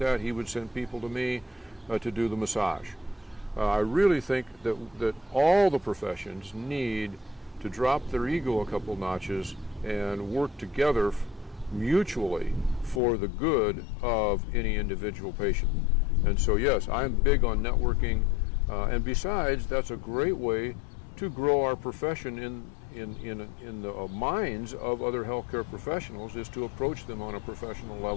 He would send people to me to do the massage. I really think that all the professions need to drop their ego a couple notches and work together mutually for the good of any individual patient. And so yes, I'm big on networking, and besides, that's a great way to grow our profession in the minds of other healthcare professionals, is to approach them on a professional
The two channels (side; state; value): right; drops out; at 13.0 s